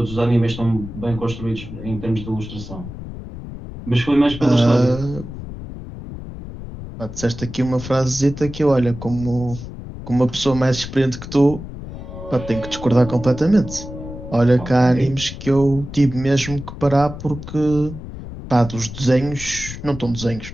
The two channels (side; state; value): left; noise; rumble, 11 dB below the sound